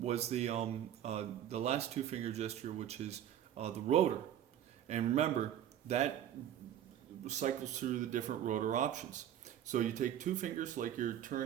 was the last two finger gesture, which is the rotor. And remember that cycles through the different rotor options. So you take two fingers like you're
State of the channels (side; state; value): left; quieter; 10.8 dB